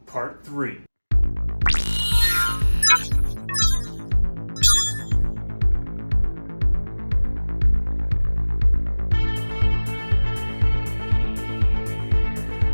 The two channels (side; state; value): both; inverted; correlation -1.00